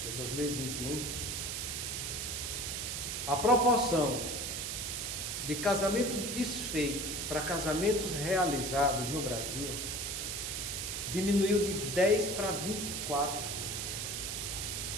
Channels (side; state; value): right; noise; hiss, 3 dB below the sound